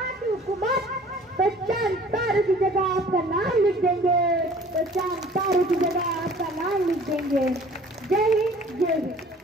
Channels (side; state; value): both; normal; correlation 0.50